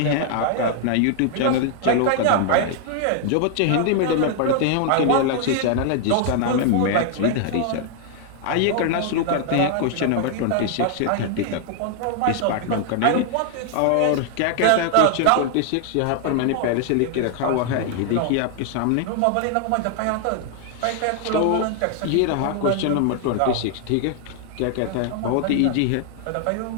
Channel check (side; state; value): both; different; correlation 0.00